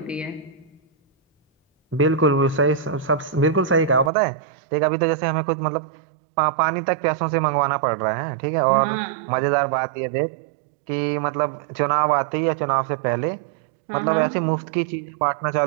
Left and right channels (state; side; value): drops out; left; at 4.1 s